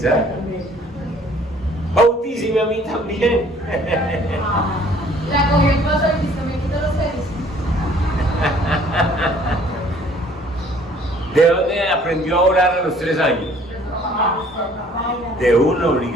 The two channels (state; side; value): normal; both; correlation 0.57